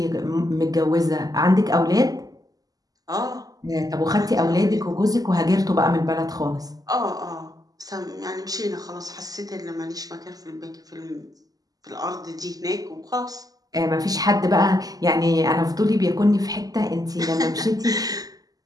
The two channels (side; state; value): left; late; 0.18 ms